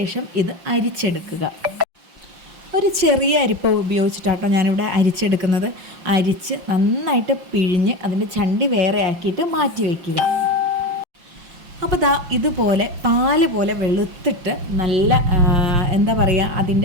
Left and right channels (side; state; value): left; late; 5.7 ms